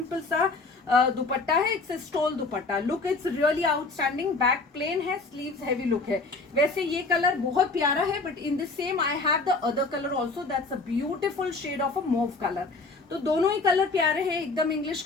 सा दुपट्टा है, it's stole dupatta, look it's really outstanding, back plain है, स्लीव्स हैवी लुक है। वैसे ये कलर बहुत प्यारा है, but in the same I have the other colour also, that's a beautiful shade of a mauve colour. तो दोनों ही कलर प्यारे हैं, एकदम इंग्लिश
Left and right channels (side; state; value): right; quieter; 3.7 dB